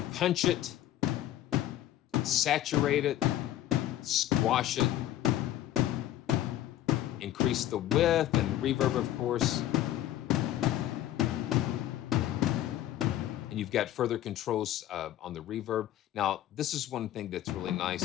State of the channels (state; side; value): quieter; right; 13.1 dB